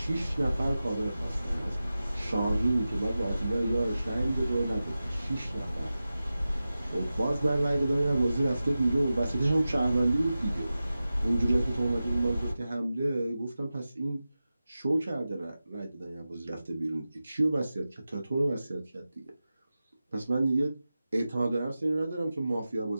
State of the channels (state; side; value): inverted; both; correlation -0.94